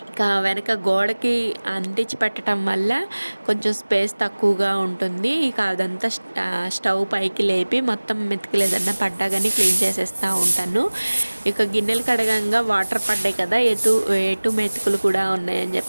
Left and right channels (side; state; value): both; inverted; correlation -1.00